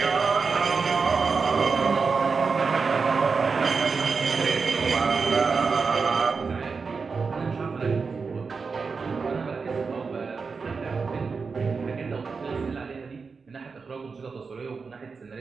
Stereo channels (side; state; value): left; quieter; 4.9 dB